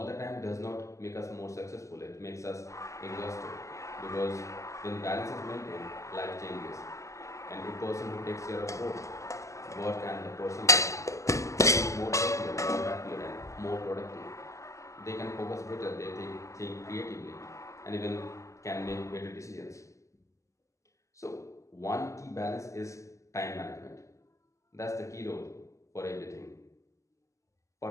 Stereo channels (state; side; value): late; right; 0.15 ms